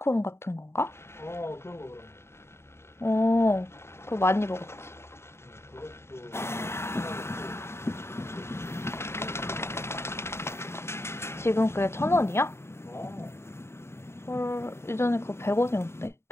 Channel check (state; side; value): late; right; 0.12 ms